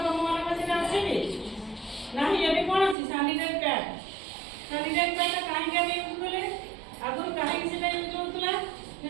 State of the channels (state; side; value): drops out; left; at 3.0 s